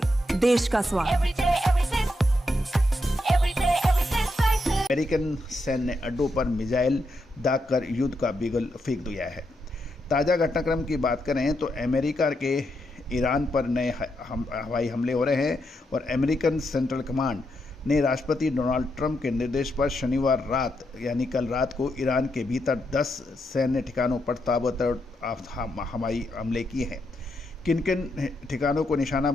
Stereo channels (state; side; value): normal; both; correlation 0.82